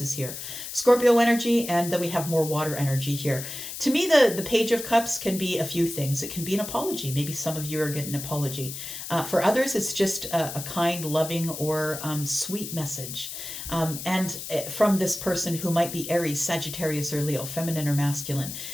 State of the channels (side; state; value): left; noise; hiss, 8 dB below the sound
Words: is here. Scorpio energy, and then we have more water energy here. To me, the Page of Cups can be a few things. It can be an apology. Maybe some of you are getting an apology. For others, it's just a kind, loving, or sweet message. And from this person who might be Aries, Sagittarius, or Leo, feminine or masculine.